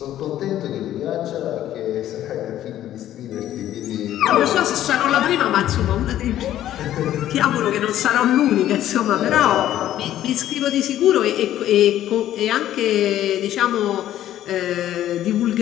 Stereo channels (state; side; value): quieter; right; 12.5 dB